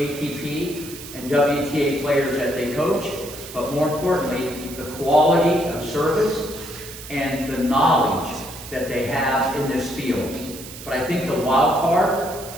and WTA players that they coach, but more importantly, the quality of service and the knowledge that they have in this field. But I think the wild card,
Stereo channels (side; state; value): right; noise; hiss, 13 dB below the sound